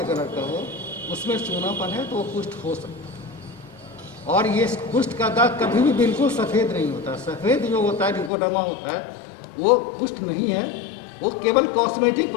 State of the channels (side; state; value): right; drops out; at 8.3 s